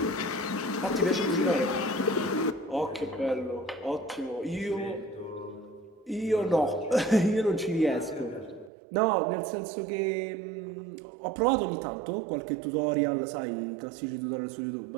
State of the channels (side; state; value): left; drops out; at 8.7 s